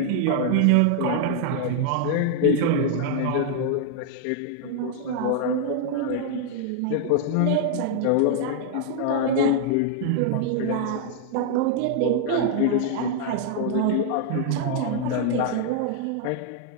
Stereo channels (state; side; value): different; both; correlation -0.01